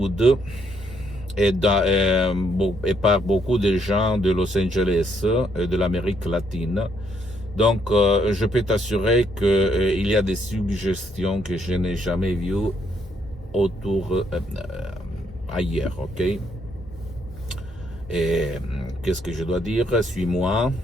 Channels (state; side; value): normal; both; correlation 0.72